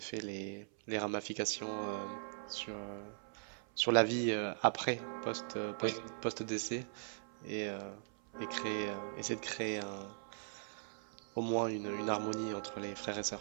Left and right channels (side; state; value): left; silent; 51 dB below the other